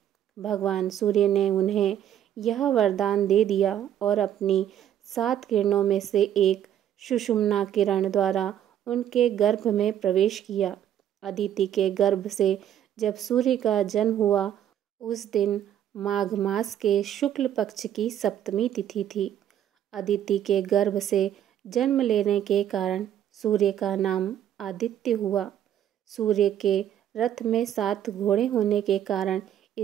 भगवान सूर्य ने उन्हें यह वरदान दे दिया और अपनी 7 किरणों में से एक सुषुम्ना किरण द्वारा उनके गर्भ में प्रवेश किया। अदिति के गर्भ से जब सूर्य का जन्म हुआ, उस दिन माघ मास के शुक्ल पक्ष की सप्तमी तिथि थी। अदिति के गर्भ से जन्म लेने के कारण सूर्य का नाम आदित्य हुआ। सूर्य के रथ में 7 घोड़े होने के कारण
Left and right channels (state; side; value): quieter; left; 10.6 dB